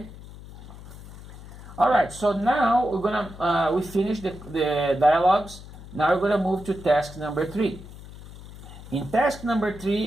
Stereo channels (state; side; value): noise; left; hum, 16 dB below the sound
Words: All right, so now we're gonna, we finished the dialogues. Now we're gonna move to task number 3. In task number